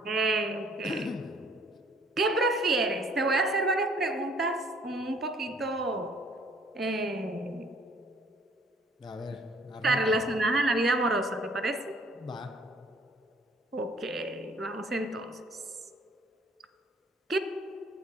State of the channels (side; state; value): both; normal; correlation 0.59